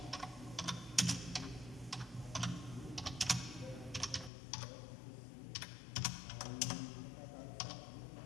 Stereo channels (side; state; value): right; drops out; at 4.3 s